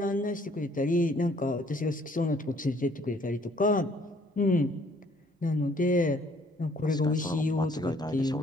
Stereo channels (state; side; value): normal; both; correlation 0.61